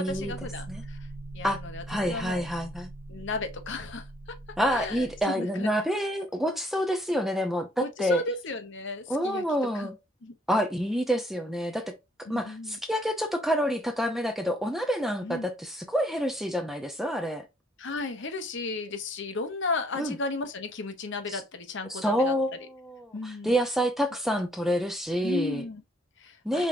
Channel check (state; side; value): normal; both; correlation 0.66